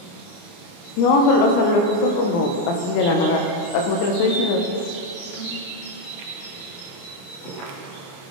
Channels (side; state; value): right; late; 29 ms